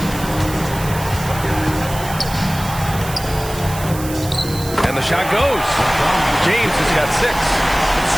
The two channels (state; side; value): noise; right; hiss, 12 dB below the sound